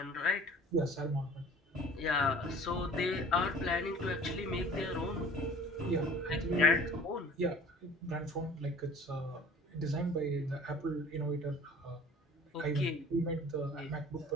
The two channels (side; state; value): both; normal; correlation 0.46